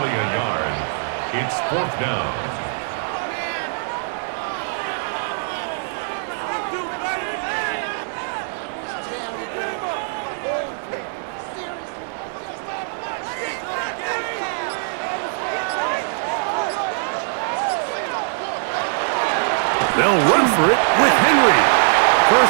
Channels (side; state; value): left; silent; digital silence